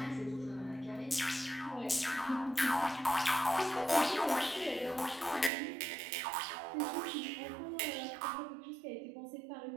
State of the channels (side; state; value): left; drops out; at 5.5 s